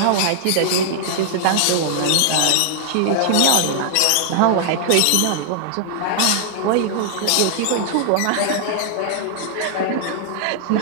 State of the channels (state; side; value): different; both; correlation -0.01